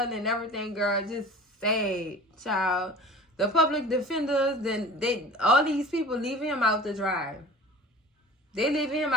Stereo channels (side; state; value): both; normal; correlation 0.40